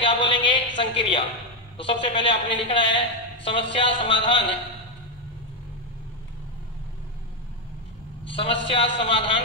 बोलेंगे? संक्रिया। तो सबसे पहले आपने लिखना है समस्या समाधान। समस्या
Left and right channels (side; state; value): both; normal; correlation 0.04